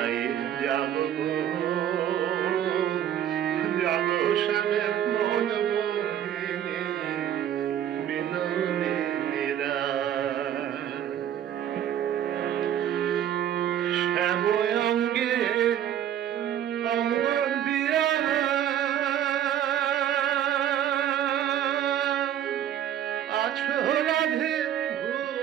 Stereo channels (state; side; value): quieter; left; 10.4 dB